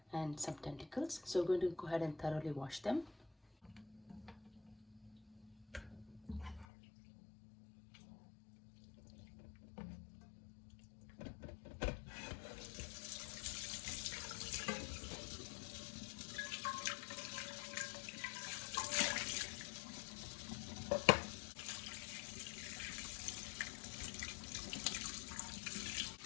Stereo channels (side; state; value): right; drops out; at 6.7 s